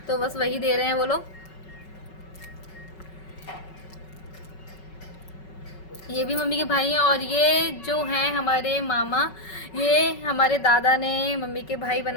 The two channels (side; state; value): right; late; 5.3 ms